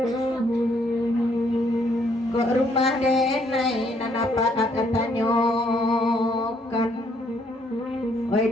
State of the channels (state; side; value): normal; both; correlation 0.68